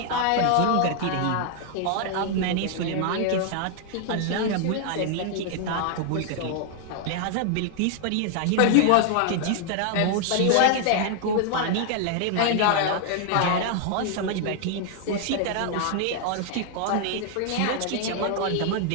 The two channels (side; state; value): both; different; correlation 0.00